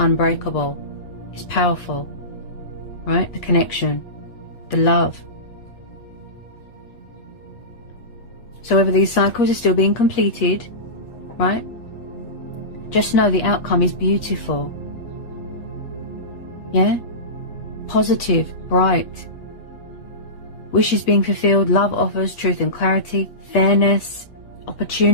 It's powerful. Right? The connection. The love. So whether these cycles are still being completed, right? Just know the outcome is beautiful. Yeah? Positive, bright. Wishes being fulfilled, love offers, truth and clarity, fairness,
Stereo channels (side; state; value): right; late; 8.1 ms